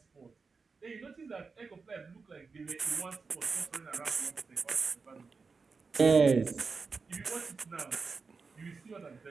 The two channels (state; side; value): quieter; left; 4.7 dB